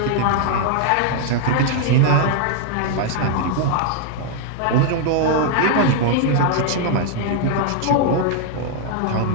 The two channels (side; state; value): both; different; correlation 0.00